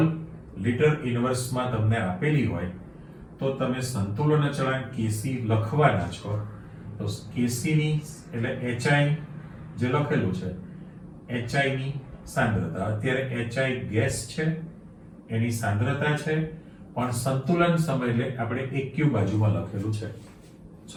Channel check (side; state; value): both; identical; correlation 1.00